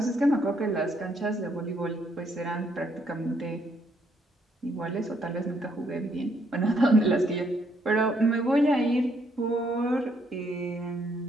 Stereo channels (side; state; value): both; normal; correlation 0.71